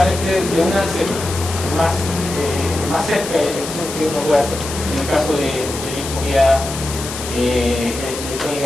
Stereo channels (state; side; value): noise; left; hiss, 9 dB below the sound